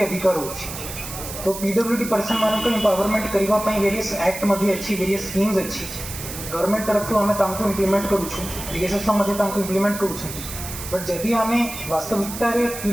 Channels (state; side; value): noise; right; hiss, 9 dB below the sound